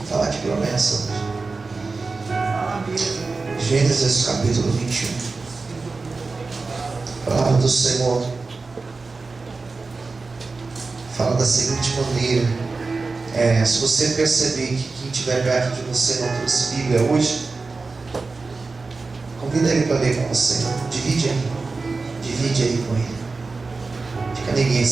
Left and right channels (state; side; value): quieter; left; 4.0 dB